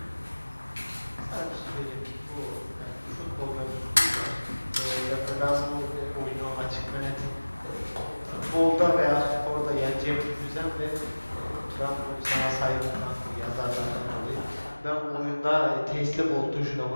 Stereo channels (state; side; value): inverted; both; correlation -1.00